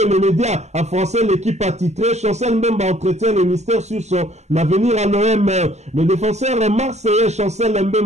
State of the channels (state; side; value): late; left; 0.33 ms